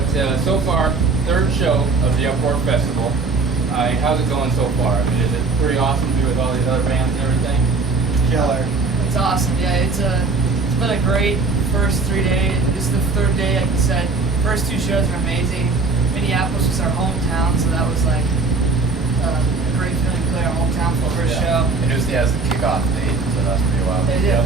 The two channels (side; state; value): left; quieter; 3.9 dB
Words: so far, third show of the Uproar Festival. How's it going so far? I mean, is it pretty awesome to be with all these other bands and everything? Killer. It's awesome. Yeah, it's been a great first 3 days. This is the third day, like you said. First two shows are amazing. Minneapolis was our hometown, so that was like a great feeling to play our hometown for the first show. And it was the kickoff date, so that was pretty wild. They did a